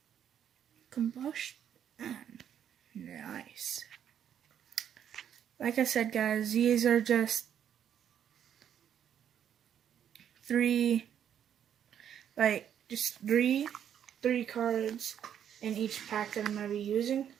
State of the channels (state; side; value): quieter; left; 9.3 dB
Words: Combustion. Nice. Like I said, guys, these are just 3 cards in each pack that I'm going to be using.